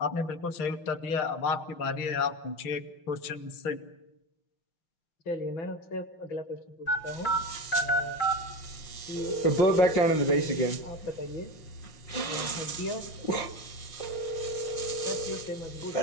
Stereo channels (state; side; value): late; right; 5.9 ms